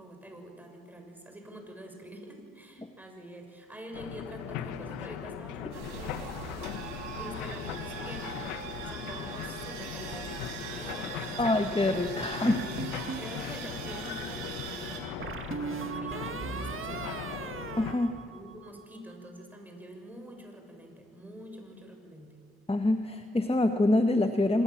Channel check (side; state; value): both; normal; correlation 0.67